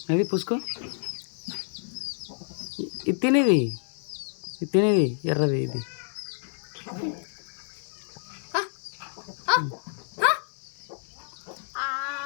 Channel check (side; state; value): right; silent; 59 dB below the other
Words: అది పుసుకో. ఇది తినేది ఎర్రది ఇది.